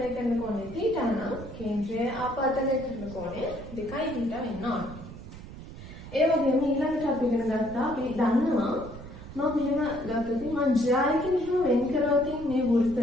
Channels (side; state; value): right; noise; rumble, 14 dB below the sound